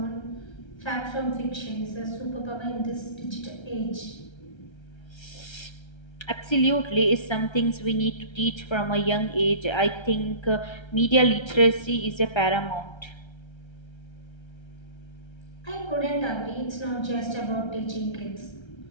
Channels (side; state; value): right; late; 1.3 ms